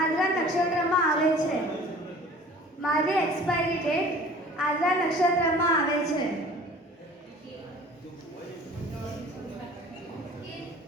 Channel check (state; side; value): normal; both; correlation 0.47